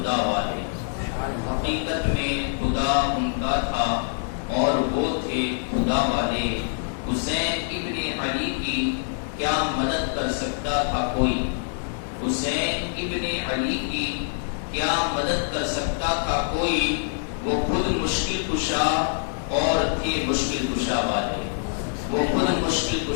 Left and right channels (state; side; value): silent; right; digital silence